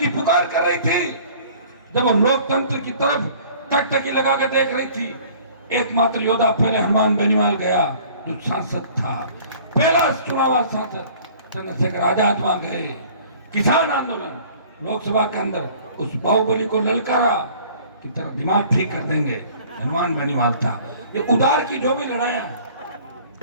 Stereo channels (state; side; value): inverted; both; correlation -0.50